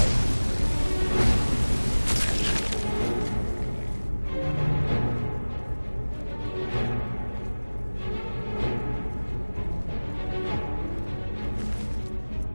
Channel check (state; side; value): inverted; both; correlation -1.00